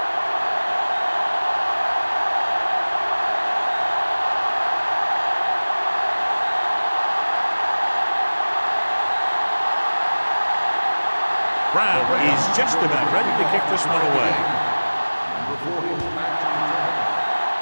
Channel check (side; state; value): both; inverted; correlation -1.00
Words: Brown is just about ready to kick this one away.